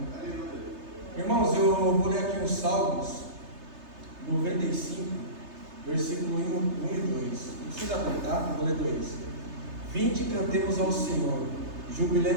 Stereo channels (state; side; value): late; left; 3.3 ms